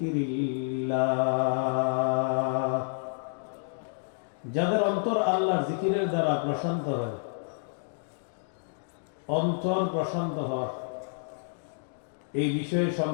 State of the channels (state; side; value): silent; right; digital silence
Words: যাদের অন্তর আল্লাহর জিকিরের দ্বারা প্রশান্ত হয়। অন্তর প্রশান্ত হওয়া, এই বিষয়ে